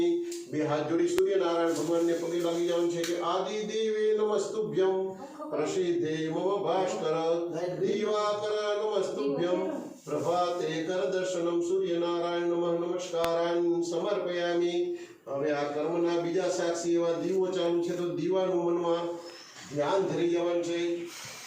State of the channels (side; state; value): both; identical; correlation 1.00